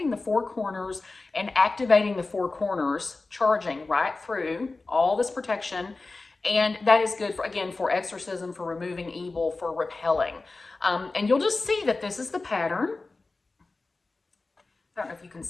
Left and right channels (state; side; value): quieter; right; 3.5 dB